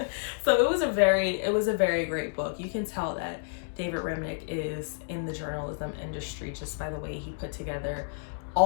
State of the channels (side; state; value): right; silent; digital silence